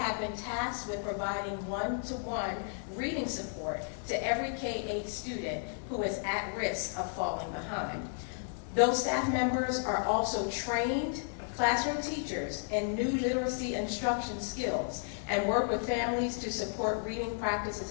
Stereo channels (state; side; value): silent; right; digital silence